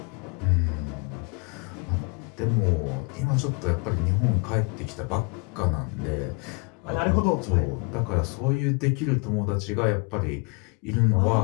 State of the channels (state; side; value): quieter; right; 33.3 dB